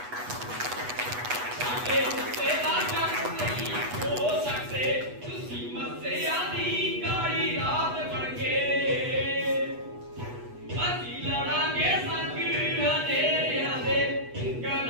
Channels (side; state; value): left; late; 8.2 ms